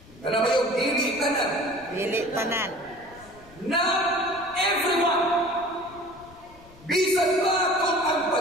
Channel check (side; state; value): left; noise; rumble, 23 dB below the sound